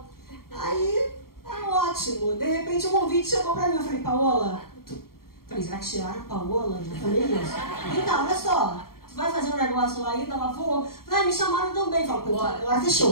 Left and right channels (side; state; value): right; late; 0.93 ms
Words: Aí, ótimo. De repente o convite chegou pra mim. Eu falei, Paola, falei, será que tiraram a Paola? Já falei isso. Então, olha só, tu vai fazer um negócio lá ainda? Ela falou, me chamaram também. Falei, agora